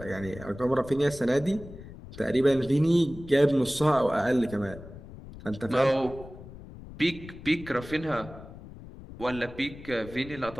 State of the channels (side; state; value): left; noise; rumble, 15 dB below the sound